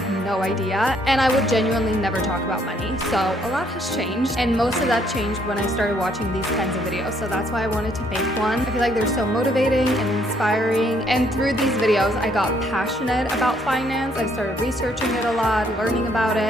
no idea. And I would genuinely never talk about money. So a lot has changed. And most of that changed when I started watching these kinds of videos. So that's why I wanted to make one. I feel like they're so motivating and inspiring. And through these videos, I got passionate about finance. I started researching it a lot, learning about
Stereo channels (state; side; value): normal; both; correlation 0.68